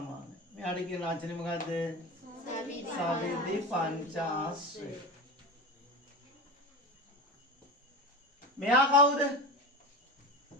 මෙයාට කියන වචනේ මොකද්ද? සවිධි පංචාශ්‍රය. මෙයා කවුද?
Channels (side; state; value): both; normal; correlation 0.26